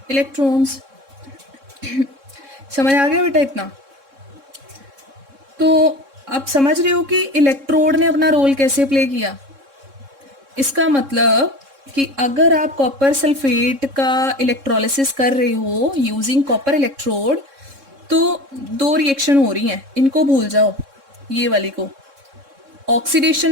इलेक्ट्रॉन्स। समझ आ गया बेटा इतना, तो आप समझ रहे हो कि इलेक्ट्रोड ने अपना रोल कैसे प्ले किया। इसका मतलब कि अगर आप कॉपर सल्फेट का इलेक्ट्रोलिसिस कर रहे हो यूजिंग कॉपर इलेक्ट्रोड, तो 2 रिएक्शन हो रही हैं, इनको भूल जाओ, ये वाली को,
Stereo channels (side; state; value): left; late; 3.6 ms